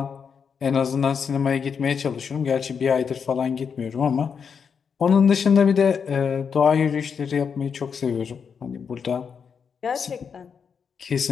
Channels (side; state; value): right; quieter; 6.5 dB